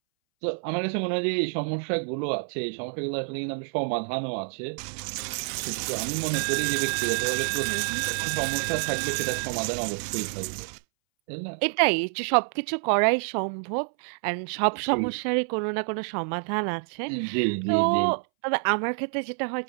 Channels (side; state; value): left; silent; 60 dB below the other